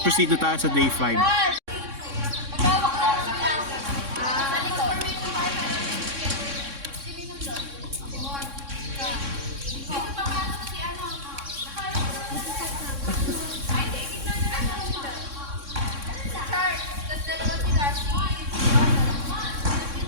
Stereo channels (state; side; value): late; left; 3.6 ms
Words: proceed na tayo sa day 5.